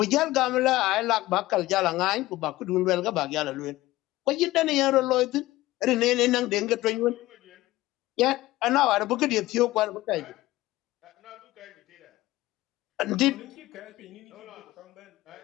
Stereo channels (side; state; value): right; quieter; 17.5 dB